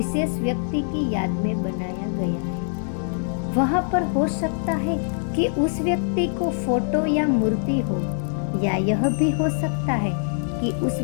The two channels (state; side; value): silent; right; digital silence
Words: व्यक्ति की याद में बनाया गया है। वहां पर हो सकता है कि उस व्यक्ति को फोटो या मूर्ति हो, या यह भी हो सकता है कि उस